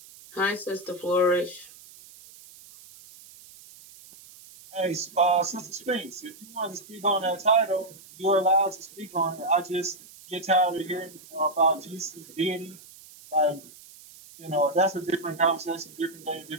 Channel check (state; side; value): noise; right; hiss, 21 dB below the sound